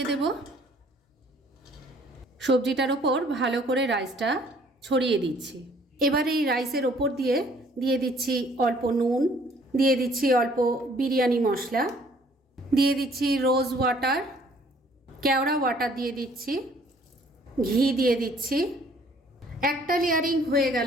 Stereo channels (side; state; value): both; normal; correlation 0.59